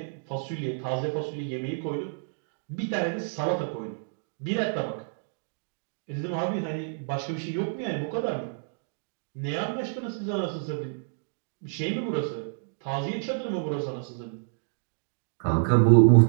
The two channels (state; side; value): silent; left; digital silence